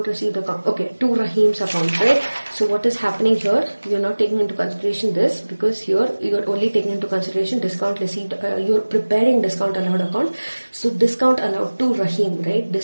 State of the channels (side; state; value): both; inverted; correlation -1.00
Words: received account. Okay, to Rahim's account, right? So what is happening here, you're not taking into consideration this, because here you're only taking into consideration discount received. You're preparing discount allowed account, so discount allowed to Rahim, right?